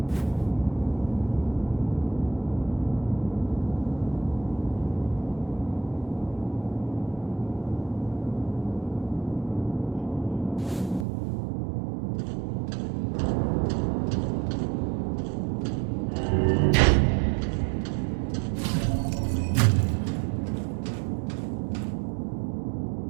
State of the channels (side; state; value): left; drops out; at 11.1 s